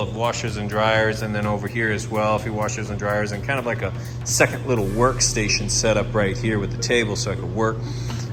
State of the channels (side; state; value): both; identical; correlation 1.00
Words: washers and dryers, and then over here as well, a few washers and dryers, and kind of like a second little workstation set up right here with the table so I could work.